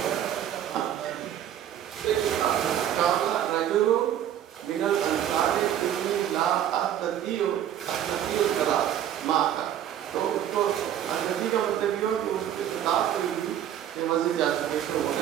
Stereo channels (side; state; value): left; quieter; 10.6 dB